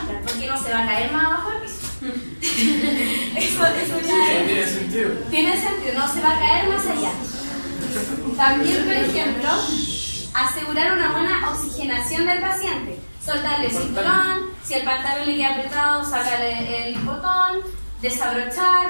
porque no se va a caer más abajo del piso. eso ya Tiene sentido. tiene sentido, no se va a caer más allá. También, por ejemplo, asegurar una buena oxigenación del paciente. Soltarle el cinturón, si el pantalón le queda apretado, sacarle el botón,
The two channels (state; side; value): inverted; both; correlation -1.00